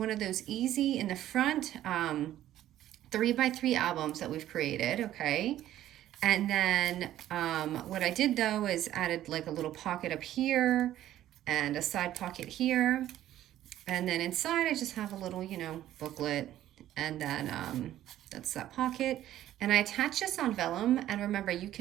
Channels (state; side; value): quieter; left; 13.0 dB